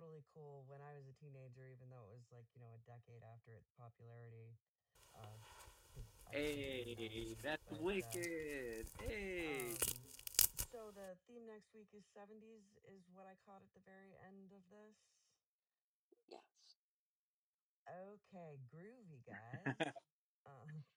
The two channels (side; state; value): both; identical; correlation 1.00